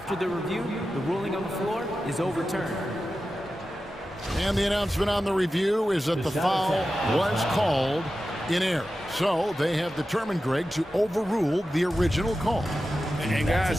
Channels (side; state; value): both; normal; correlation 0.93